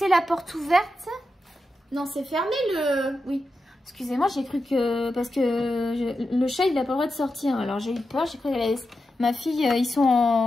la porte ouverte. Non, c'est fermé le... Oui, excusez-moi, j'ai cru que... Parce que le chat, il n'a pas le droit de sortir. Alors j'ai eu peur, j'ai cru qu'elle allait... Ma fille, ils sont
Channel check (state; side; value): normal; both; correlation 0.89